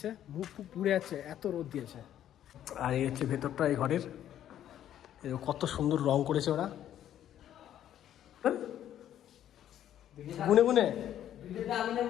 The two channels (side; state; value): right; quieter; 11.1 dB